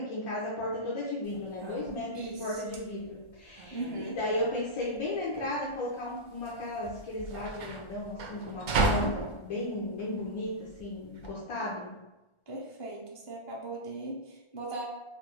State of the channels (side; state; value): right; late; 1.4 ms